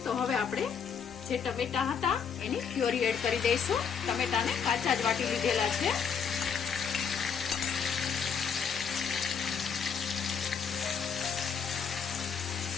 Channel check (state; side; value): quieter; right; 6.8 dB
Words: તો હવે આપણે જે ટમેટા હતા એની પ્યોરી એડ કરી દઈશું। ટમેટાને કાચા જ વાટી લીધેલા છે